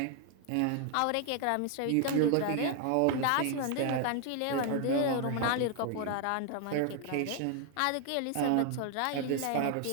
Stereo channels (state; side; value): different; both; correlation 0.00